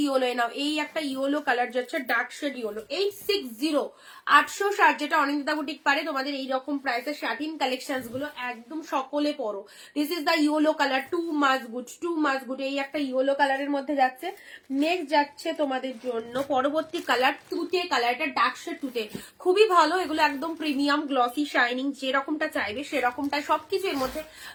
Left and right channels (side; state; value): both; identical; correlation 1.00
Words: yellow now. এই একটা ইয়েলো কালার যাচ্ছে, ডার্ক শেড ইয়েলো। 860, 860, যেটা অনিন্দিতা বুটিক পারে তোমাদের এইরকম প্রাইসের শাটিন কালেকশন গুলো একদম সকলে পরো। This is the yellow colour, too much good. এই একটা ইয়েলো কালারের মধ্যে যাচ্ছে। নেক্সট যাচ্ছে তোমাদের জন্য পরবর্তী কালার তুতে কালার, এটা ডার্ক শেড তুতে, খুবই ভালো। এগুলো একদম প্রিমিয়াম গ্লসি শাইনিং, যেরকমটা চাইবে সেরকমটা সবকিছু এর মধ্যে